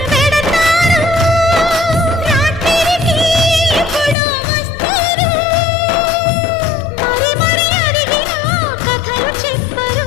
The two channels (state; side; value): drops out; right; at 4.2 s